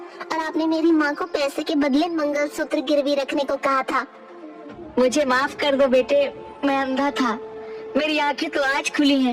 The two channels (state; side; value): identical; both; correlation 1.00